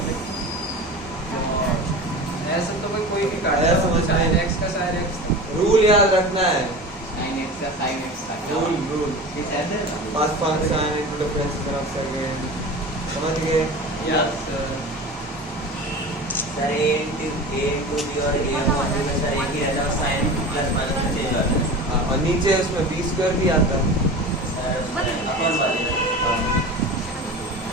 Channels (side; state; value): both; normal; correlation 0.33